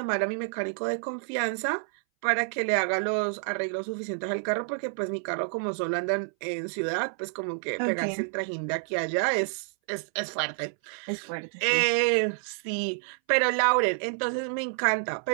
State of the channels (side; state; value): left; silent; 59 dB below the other